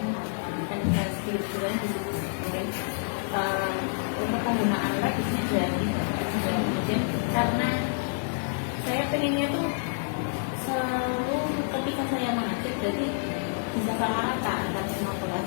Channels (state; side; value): silent; right; digital silence